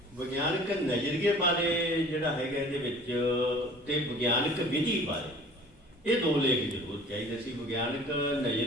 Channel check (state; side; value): normal; both; correlation 0.47